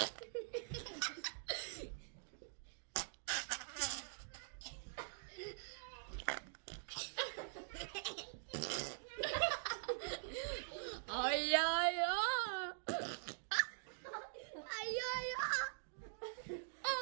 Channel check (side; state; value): left; silent; digital silence